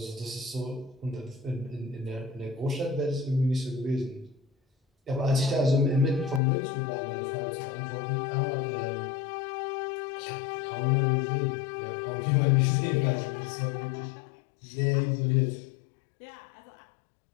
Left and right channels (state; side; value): drops out; right; at 6.4 s